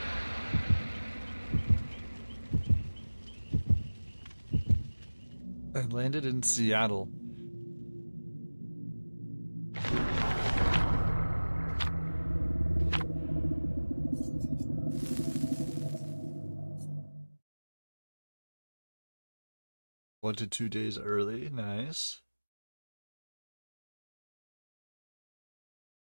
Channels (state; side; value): inverted; both; correlation -1.00